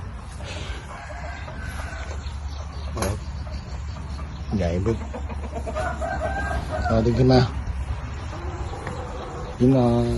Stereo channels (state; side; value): identical; both; correlation 1.00